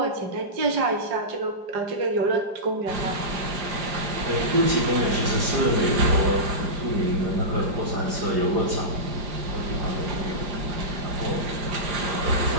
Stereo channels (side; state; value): left; late; 5.0 ms